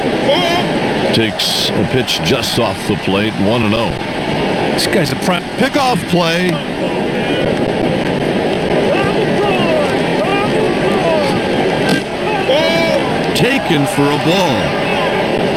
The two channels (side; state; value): both; identical; correlation 1.00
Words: takes a pitch just off the plate, 1-0. This guy's a prime Pickoff play. Taken for a ball.